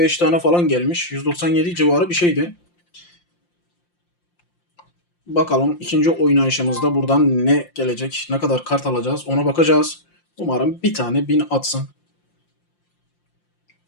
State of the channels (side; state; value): right; late; 5.7 ms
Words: tane falan gelmiş. 197 civarı bir şeydi. Bakalım ikinci oynayışımızda buradan ne gelecek, ne kadar kart alacağız ona bakacağız. Umarım bir tane 1000 atsın.